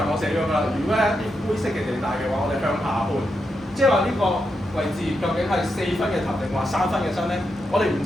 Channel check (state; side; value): normal; both; correlation 0.84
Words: 我寫咗㗎啦，如果係一啲灰色嘅地帶嘅話，我哋向下判，即係話呢個位置究竟係4分嘅頭定話3分嘅身咧？我哋唔